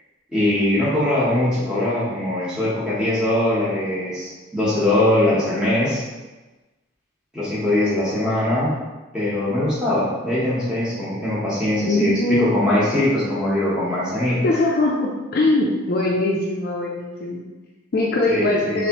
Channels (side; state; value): both; normal; correlation 0.51